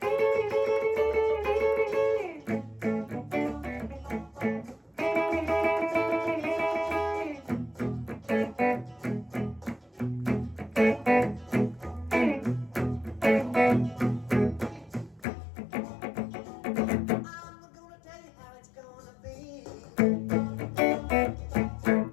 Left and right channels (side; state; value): right; drops out; at 15.2 s